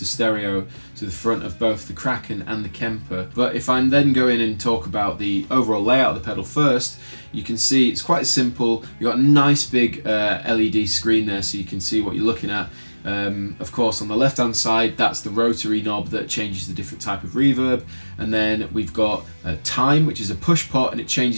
stereo to the front of both the Kraken and the Kemper. But if I then go in and talk about the overall layout of the pedal first, you can see it's quite simple. You've got a nice big LED screen there so you can see what you're looking at. Of course, on the left hand side, that's the rotary knob that changes the different type of reverb, and then we've got time, which is a push pot, and it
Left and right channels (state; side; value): inverted; both; correlation -1.00